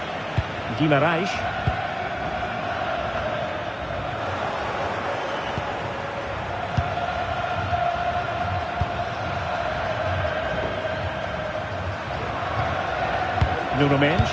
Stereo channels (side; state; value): both; identical; correlation 1.00